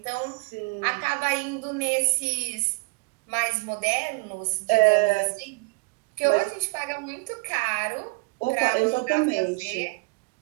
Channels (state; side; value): quieter; left; 28.9 dB